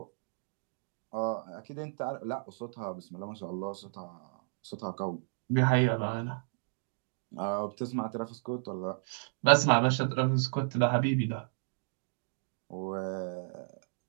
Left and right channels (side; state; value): left; silent; digital silence